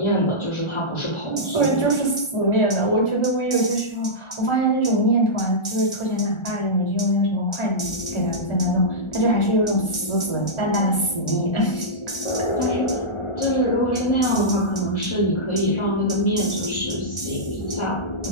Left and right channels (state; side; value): late; right; 1.4 ms